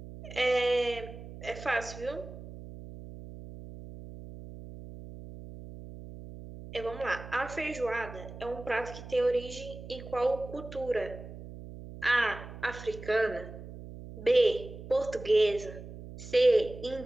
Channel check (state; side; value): noise; right; hum, 13 dB below the sound